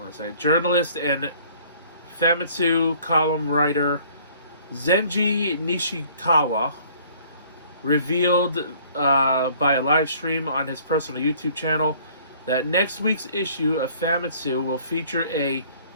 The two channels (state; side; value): inverted; both; correlation -0.55